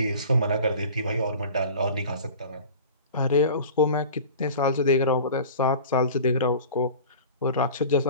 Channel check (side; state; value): both; inverted; correlation -0.40